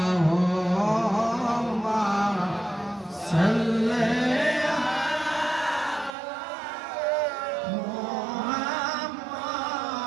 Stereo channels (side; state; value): left; drops out; at 6.2 s